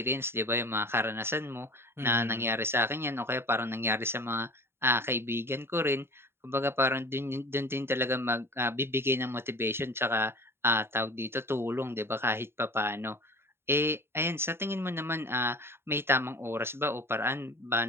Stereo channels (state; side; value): late; left; 0.11 ms